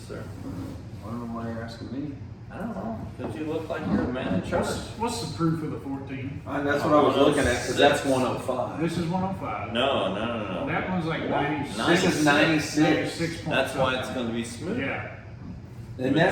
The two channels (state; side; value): identical; both; correlation 1.00